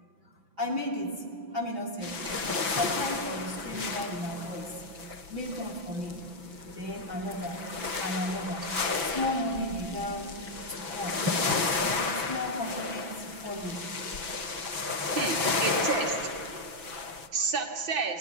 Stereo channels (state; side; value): late; left; 6.0 ms